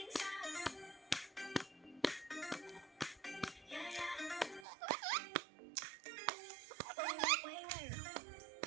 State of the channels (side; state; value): left; drops out; at 4.7 s